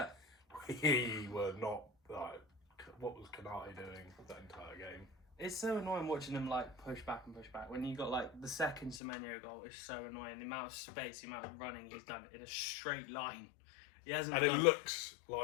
We were not like, what was Canati doing that entire game? It's so annoying watching them like push back and push back. When you got like the second Semenyo goal, it's so annoying. The amount of space, the amount of running he's done in a straight line. He hasn't. And it looks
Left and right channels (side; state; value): right; drops out; at 9.0 s